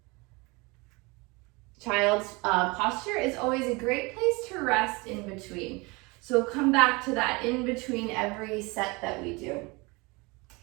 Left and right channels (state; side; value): quieter; left; 26.1 dB